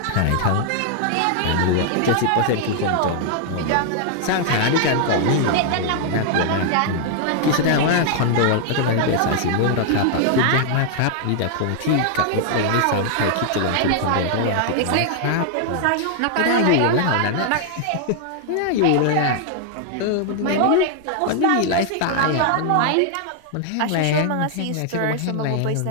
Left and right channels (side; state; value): both; different; correlation 0.00